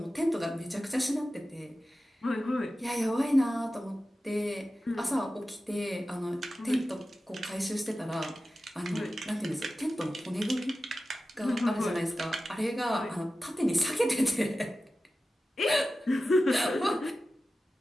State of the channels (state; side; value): normal; both; correlation 0.94